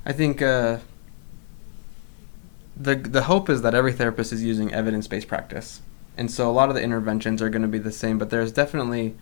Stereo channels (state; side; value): silent; right; 62 dB below the other